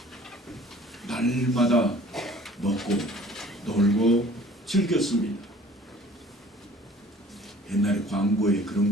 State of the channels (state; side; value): normal; both; correlation 0.50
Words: 날마다 먹고 놀고 즐겼습니다. 옛날에 광고에